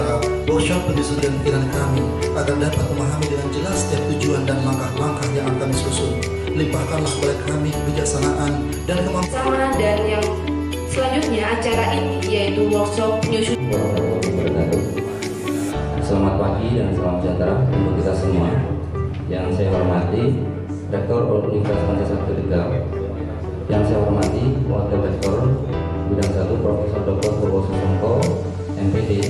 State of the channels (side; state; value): both; identical; correlation 1.00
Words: workshop penyusunan pikiran kami agar dapat memahami dengan jelas setiap tujuan dan langkah-langkah yang akan kami susun. Limpahkanlah kepada kami kebijaksanaan dan kemampuan. Dan yang selanjutnya acara ini yaitu workshop penyusunan. Selamat pagi dan salam sejahtera untuk kita semua. Yang saya hormati Rektor Universitas Pancasila Tegal, yang saya hormati Wakil Rektor Bidang 1 Profesor Dr. Bobo Susongko,